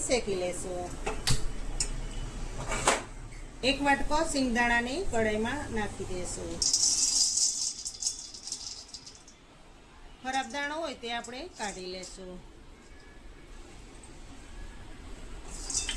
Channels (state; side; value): identical; both; correlation 1.00